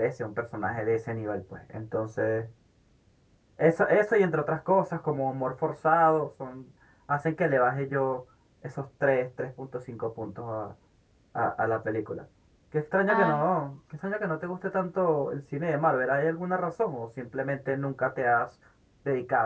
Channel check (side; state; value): both; identical; correlation 1.00